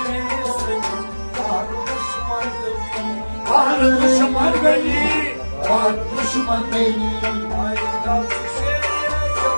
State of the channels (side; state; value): both; inverted; correlation -1.00